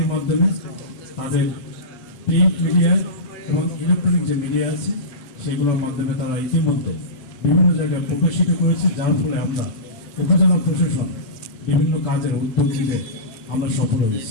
মাধ্যমে, তাদের প্রিন্ট মিডিয়ায় এবং ইলেকট্রনিক যে মিডিয়া আছে সেগুলোর মাধ্যমে তারা ইতিমধ্যে বিভিন্ন জায়গায় প্রকাশিত করেছে, যার ফলে আমরা উপজেলা প্রশাসন বিভিন্ন কাজের উদ্যোগ নিতে আমরা সফল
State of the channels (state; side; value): late; right; 8.3 ms